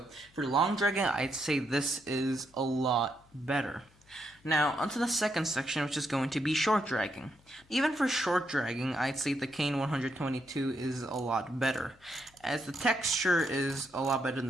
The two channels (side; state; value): left; noise; hum, 30 dB below the sound